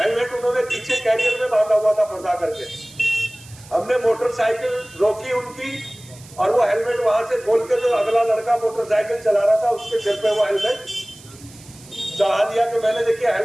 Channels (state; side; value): noise; right; hiss, 21 dB below the sound